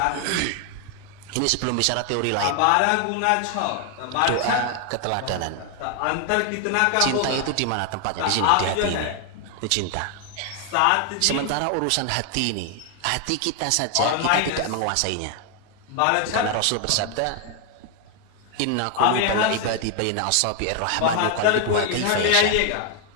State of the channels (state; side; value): different; both; correlation 0.00